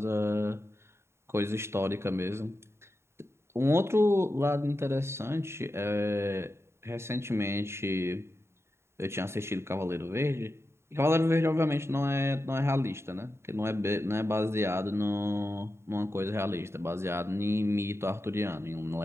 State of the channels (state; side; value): late; left; 0.13 ms